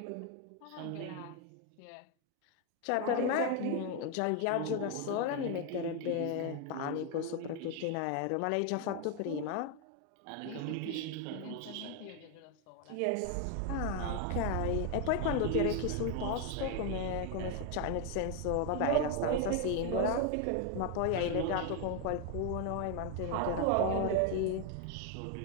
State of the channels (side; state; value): both; different; correlation 0.01